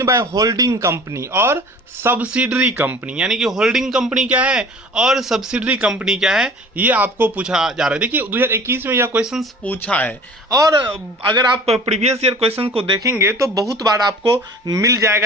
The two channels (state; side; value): normal; both; correlation 0.45